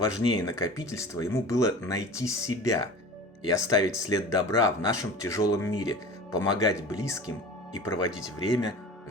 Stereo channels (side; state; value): both; normal; correlation 0.38